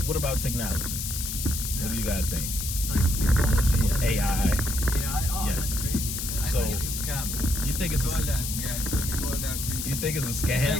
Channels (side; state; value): left; noise; hiss, 4 dB below the sound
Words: about technology? What do you guys think? Like technology With as AI. AI. Oh, Yes. that's crazy. I So- think it's a scam. You think it's Called a, that. Yeah, it's gonna be called that. you think it's a It's